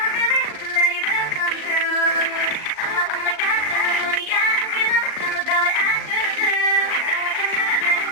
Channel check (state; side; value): late; right; 38 ms